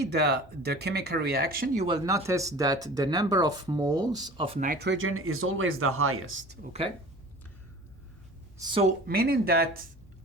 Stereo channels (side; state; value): both; normal; correlation 0.40